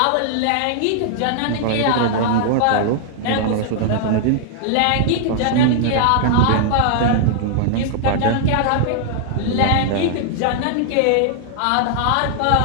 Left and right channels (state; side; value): different; both; correlation -0.01